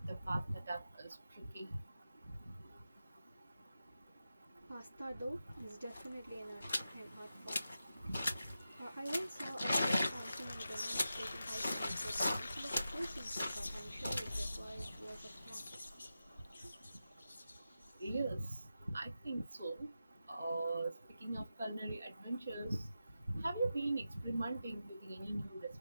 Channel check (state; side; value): inverted; both; correlation -0.91